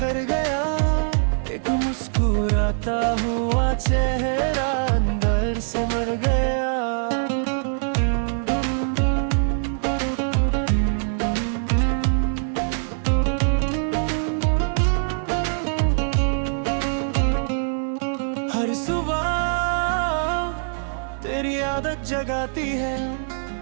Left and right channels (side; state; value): left; silent; digital silence